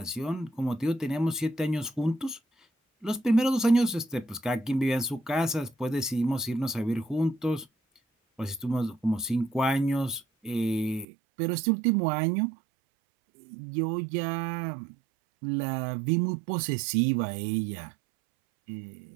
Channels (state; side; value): drops out; left; at 11.1 s